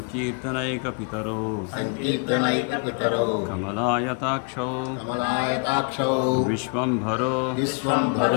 पितरो कमलायताक्षौ विश्वंभरो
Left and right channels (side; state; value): right; quieter; 36.6 dB